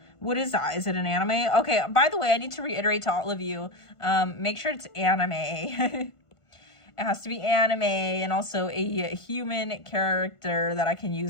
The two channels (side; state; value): right; late; 1.5 ms